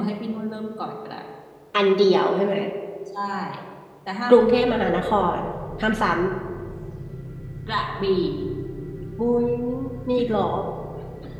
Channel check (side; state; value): both; identical; correlation 1.00